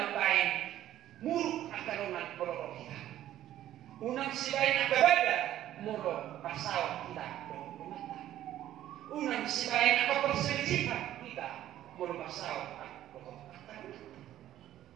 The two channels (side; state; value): left; quieter; 12.6 dB